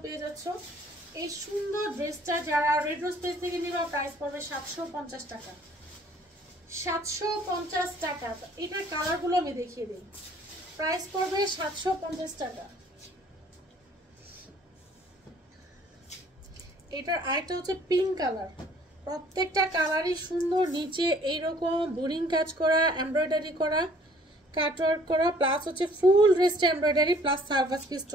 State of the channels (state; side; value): normal; both; correlation 0.57